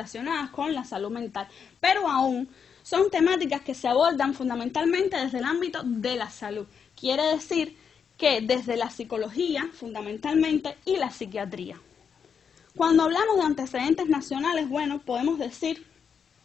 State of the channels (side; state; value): right; quieter; 6.8 dB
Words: con la salud mental, pero aún son temáticas que se abordan fundamentalmente desde el ámbito de la salud. Quiere decir que desde la psicología, fundamentalmente, y la psiquiatría. Cuando hablamos de antecedentes nacionales, bueno, podemos decir